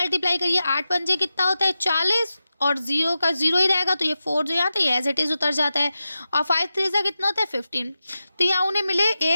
करिए, 8 पंजे कितना होता है 40, और जीरो का जीरो ही रहेगा, तो ये 4 जो यहाँ था ये एज इट इज़ उतर जाता है, और 5 3 का कितना होता है 15। तो यहाँ उन्हें मिले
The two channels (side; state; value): both; inverted; correlation -0.92